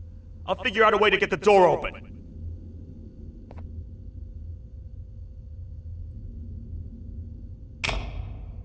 I'll figure out a way to get the door open.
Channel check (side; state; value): both; identical; correlation 1.00